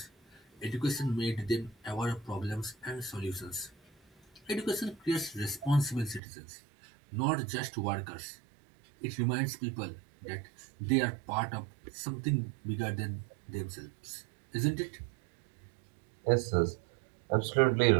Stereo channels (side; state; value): left; drops out; at 6.2 s